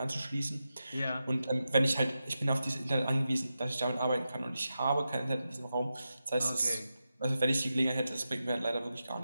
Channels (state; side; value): inverted; both; correlation -0.90